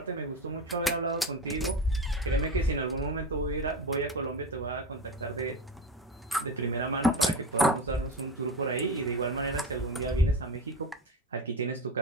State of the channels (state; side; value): normal; both; correlation 0.23